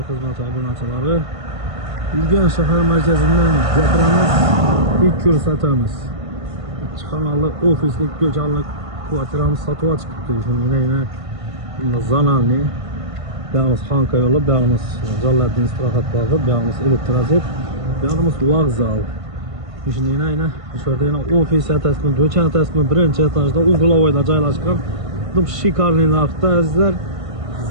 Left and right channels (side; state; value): left; late; 1.5 ms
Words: xizmati obunachilari. Urganch shahar markazidan gapiramiz, ilk ko'rsatamiz. Ikki xonali ofislik ko'chanlik kvartiramiz sotib chiqibdi. Shuningdek, bunda zonalni, buyog'imiz Xonka yo'li, buyog'imiz Jaloliddin istirohat bog'i, buyog'imiz Elektroset, buyog'imiz vokzal. Shuningdek, shu yerda ofis etasmi, do'kon etasmi, birinchi etajda uglovoyda joylashgan. Bu shikarniy narxda azizlar.